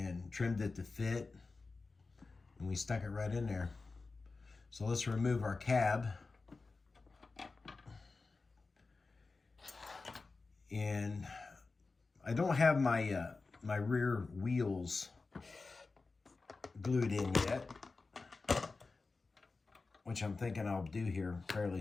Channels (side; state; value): right; quieter; 3.9 dB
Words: trimmed it to fit, and we stuck it right in there. So let's remove our cab. And I don't have my my rear wheels glued in yet, which I'm thinking I'll do here fairly